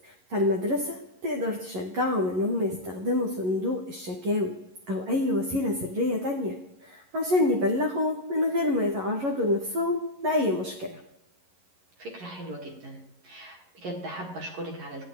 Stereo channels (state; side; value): late; left; 11 ms